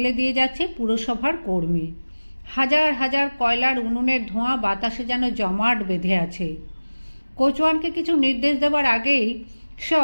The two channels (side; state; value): both; inverted; correlation -1.00